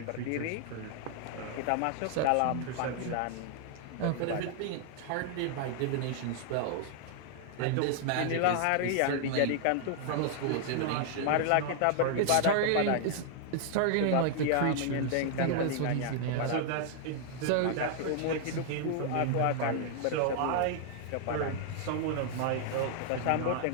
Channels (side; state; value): both; different; correlation 0.00